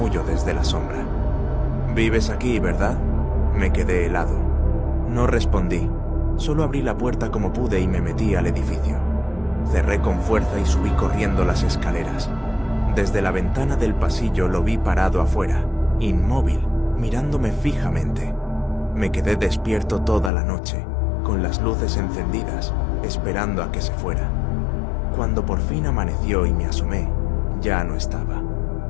desde la sombra. «¿Vives aquí, verdad?» Me quedé helado. No respondí, solo abrí la puerta como pude y me metí al edificio. Cerré con fuerza y subí corriendo las escaleras. Desde la ventana del pasillo lo vi parado afuera, inmóvil, mirándome fijamente. Me quedé despierto toda la noche, con las luces encendidas, esperando a que se fuera. Cuando por fin amaneció y me asomé, ya no estaba.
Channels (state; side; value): drops out; right; at 20.3 s